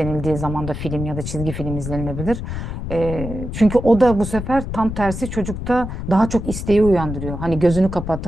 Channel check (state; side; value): noise; left; rumble, 6 dB below the sound